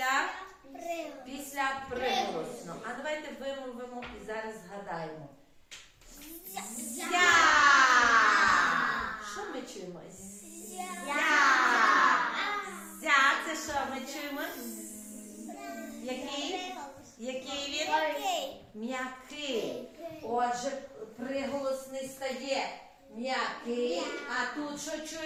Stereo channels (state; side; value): identical; both; correlation 1.00